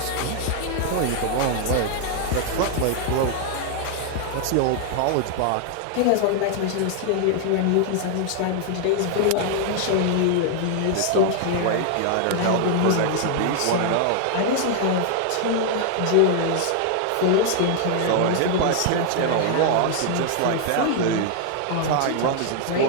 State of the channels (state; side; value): different; both; correlation 0.00